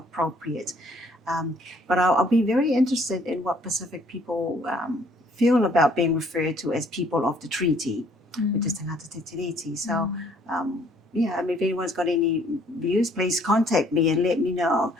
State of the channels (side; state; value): both; normal; correlation 0.61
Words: But I'll be very interested in what Pacific people feel about being referred to as people of the treaty, which is Tangata Tiriti. So, if anyone's got any views, please contact me and let me know,